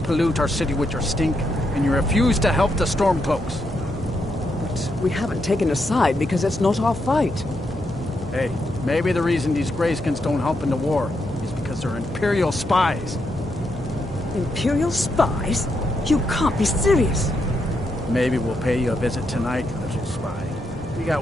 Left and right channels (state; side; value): normal; both; correlation 0.81